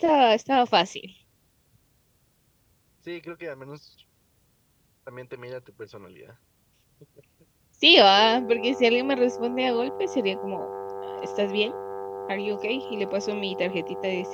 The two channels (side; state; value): both; identical; correlation 1.00